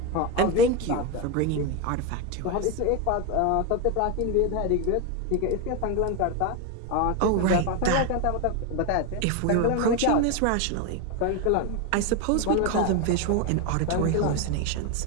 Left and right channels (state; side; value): different; both; correlation 0.02